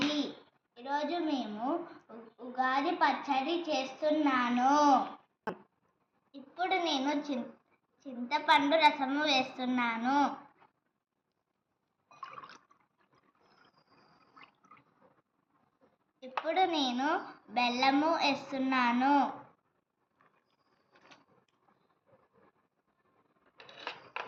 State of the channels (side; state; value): both; identical; correlation 1.00